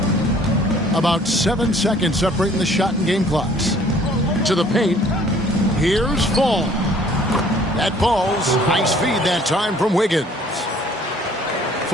About 7 seconds separating the shot and game clocks. To the paint. Here's Fall. That falls. Nice feed that time from Wiggins.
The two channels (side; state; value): both; normal; correlation 0.56